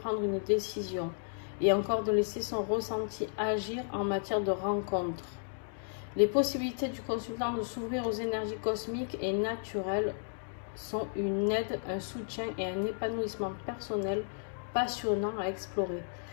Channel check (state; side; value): silent; right; digital silence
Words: une décision et encore de laisser son ressenti agir en matière de rencontre. Les possibilités du consultant de s'ouvrir aux énergies cosmiques et naturelles sont une aide, un soutien et un épanouissement personnel passionnant à explorer.